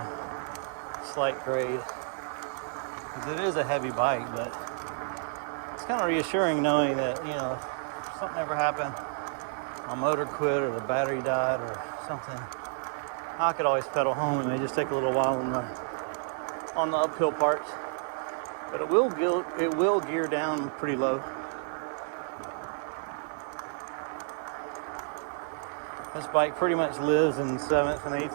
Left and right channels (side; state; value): left; silent; 58 dB below the other